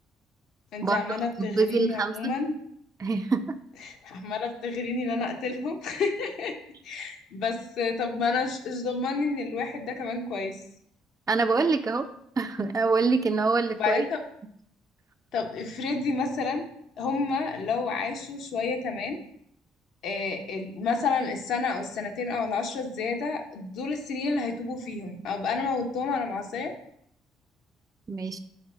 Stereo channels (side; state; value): both; normal; correlation 0.64